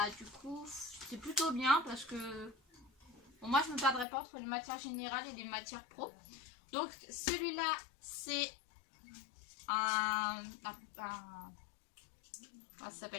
du coup c'est plutôt bien parce que bon, moi je me perdrai pas entre les matières générales et les matières pro. Donc celui-là c'est comment ça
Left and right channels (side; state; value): right; drops out; at 4.0 s